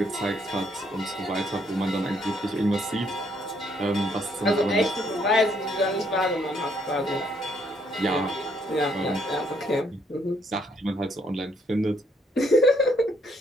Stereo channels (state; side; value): normal; both; correlation 0.70